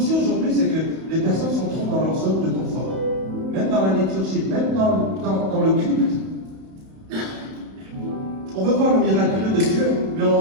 aujourd'hui, c'est que les personnes sont trop dans leur zone de confort. Même dans la liturgie, même dans le culte. On veut voir le miraculeux de Dieu, mais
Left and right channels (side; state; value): left; late; 31 ms